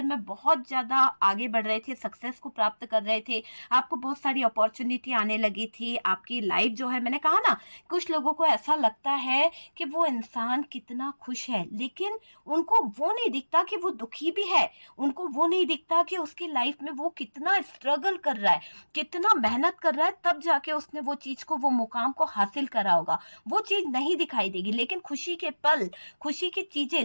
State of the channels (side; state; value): both; inverted; correlation -1.00